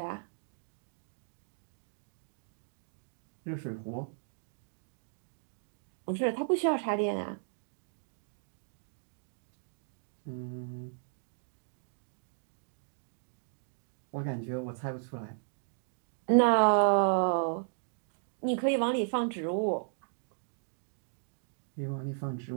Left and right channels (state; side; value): silent; left; digital silence